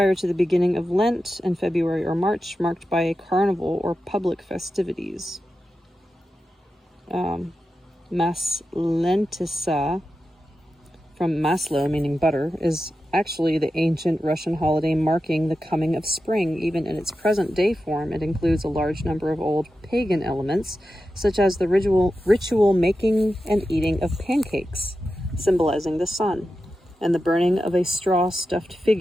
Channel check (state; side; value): normal; both; correlation 0.91